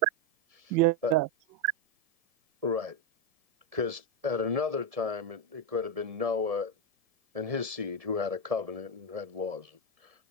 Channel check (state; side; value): late; left; 1.7 ms